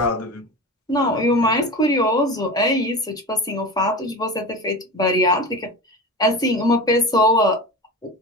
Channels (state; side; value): normal; both; correlation 0.29